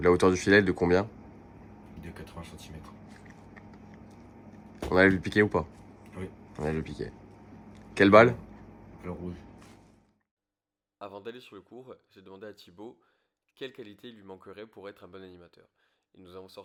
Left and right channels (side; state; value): both; identical; correlation 1.00